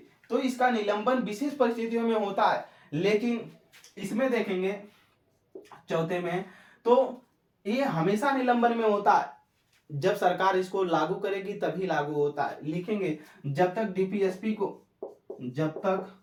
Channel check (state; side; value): identical; both; correlation 1.00